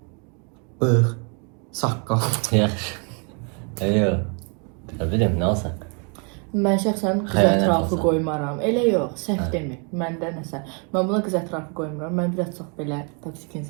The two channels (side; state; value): left; quieter; 37.3 dB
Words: Bığ, saqqal. Yaxşı. Yox. Ne bileyim ne olsa. Mən şəxsən qız Xəyanət ətrafı olsa. qoymaram. Elə yox, səhv demir. Məndə nəsə. Mən buna qız ətrafı qoymuram. Mən biraz çox belə toksik